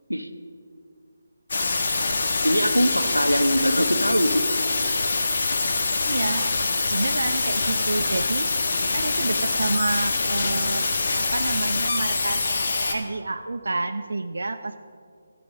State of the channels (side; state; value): both; inverted; correlation -0.92